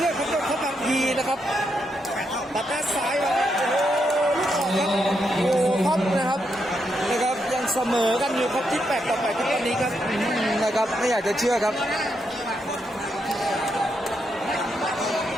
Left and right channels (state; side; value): normal; both; correlation 0.81